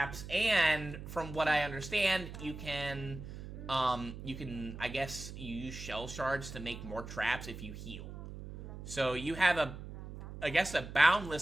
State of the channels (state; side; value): noise; right; hum, 11 dB below the sound